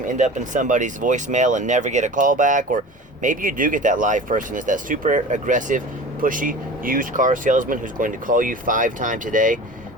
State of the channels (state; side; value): normal; both; correlation 0.37